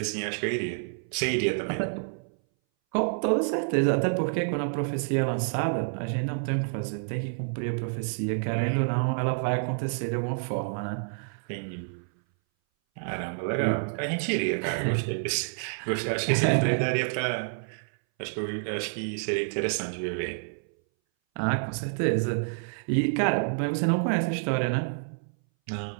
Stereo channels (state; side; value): silent; left; 59 dB below the other